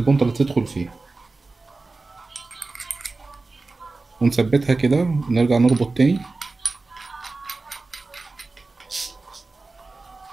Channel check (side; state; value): left; quieter; 3.6 dB